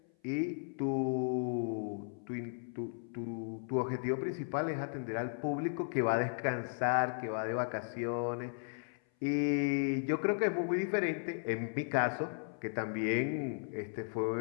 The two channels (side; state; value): right; silent; 54 dB below the other